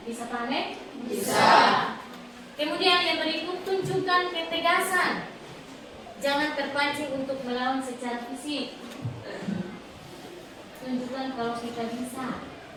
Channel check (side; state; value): both; identical; correlation 1.00